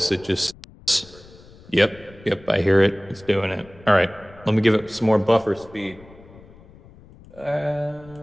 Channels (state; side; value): noise; left; rumble, 23 dB below the sound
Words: it just, yep, I hear it, it's doing it. All right, let me give it some more buffer speed.